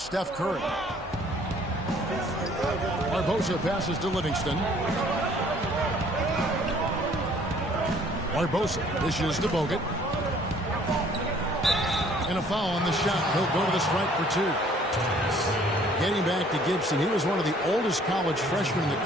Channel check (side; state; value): both; normal; correlation 0.58